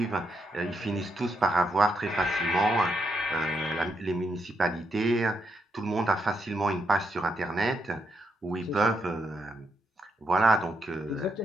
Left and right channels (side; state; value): both; normal; correlation 0.80